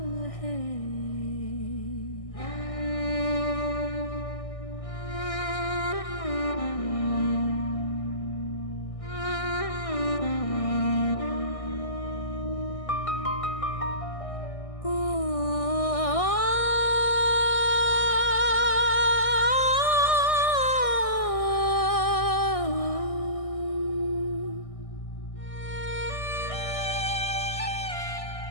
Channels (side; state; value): right; late; 1.6 ms